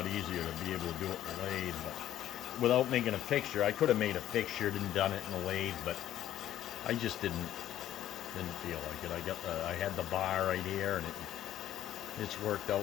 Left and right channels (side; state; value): right; quieter; 12.2 dB